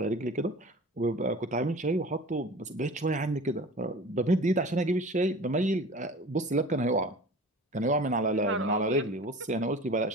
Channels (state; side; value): normal; both; correlation 0.40